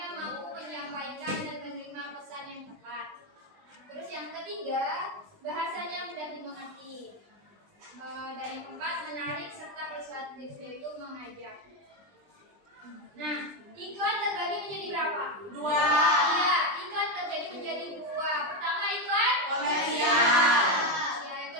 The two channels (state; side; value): late; left; 20 ms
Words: mampu menyampaikan dan menerima pesan yang tepat. Terus yang ketiga, bahasanya mudah dimengerti. Dan yang keempat, menarik serta persuasif, yaitu mengajak. Nah, iklan terbagi menjadi berapa? 2. Iya, iklan terbagi menjadi 2. Pertama, iklan komersial. Ya, yang